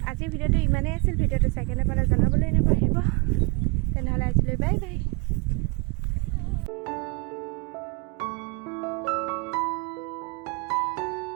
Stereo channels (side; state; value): left; quieter; 29.5 dB